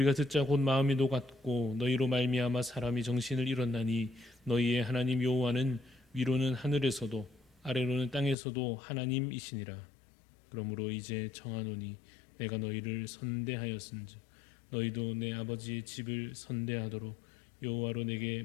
듣자 곧 마음이 녹았고 너희로 말미암아 사람이 정신을 잃었나니 너희의 하나님 여호와는 위로는 하늘에서도 아래로는 땅에서도 하나님이시니라. 그러므로 이제 청하노니 내가 너희를 선대하였은즉 너희도 내 아버지의 집을 선대하도록 여호와로 내게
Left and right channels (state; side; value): drops out; right; at 8.3 s